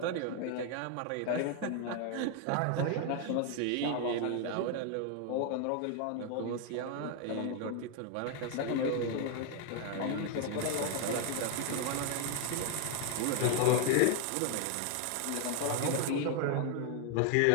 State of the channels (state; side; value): different; both; correlation 0.00